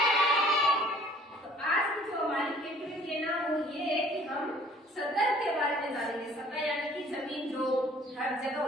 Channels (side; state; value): both; normal; correlation 0.54